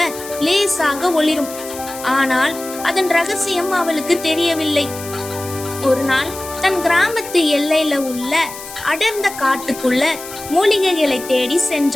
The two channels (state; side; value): noise; left; hiss, 13 dB below the sound